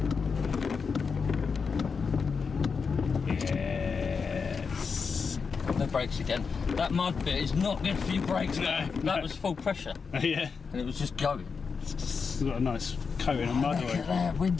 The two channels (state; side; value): quieter; right; 5.4 dB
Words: Yes. No brakes again. That mud bit is not good for your brakes. No, that was full pressure. Yeah. And it was just going. It's got a nice coating of mud Look oil. at there,